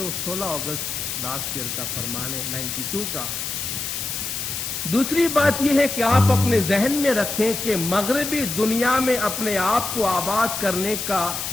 16 अगस्त लास्ट ईयर का फरमान है 92 का। दूसरी बात यह है कि आप अपने जहन में रखें कि मगरबी दुनिया में अपने आप को आबाद करने का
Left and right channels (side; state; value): left; noise; hiss, 4 dB below the sound